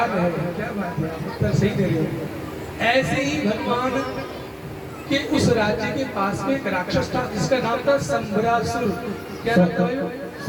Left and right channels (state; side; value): identical; both; correlation 1.00